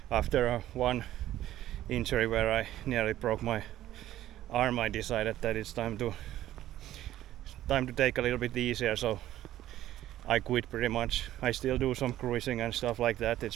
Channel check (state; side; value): quieter; left; 13.5 dB